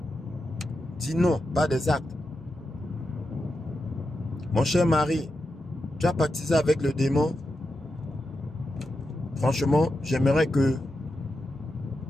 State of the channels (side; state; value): both; normal; correlation 0.88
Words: Dis non, pas des actes. Mon cher mari, tu as pactisé avec le démon. Franchement, j'aimerais que